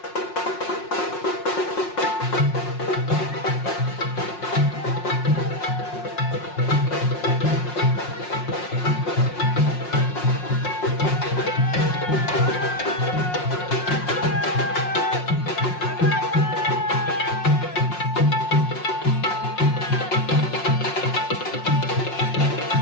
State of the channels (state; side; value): late; right; 5.6 ms